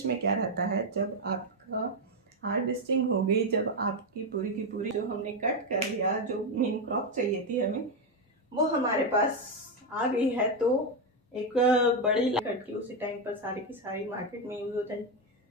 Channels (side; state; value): both; normal; correlation 0.06